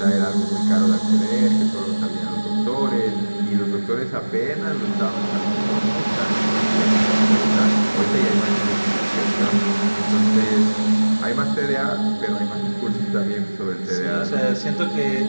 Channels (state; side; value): inverted; both; correlation -1.00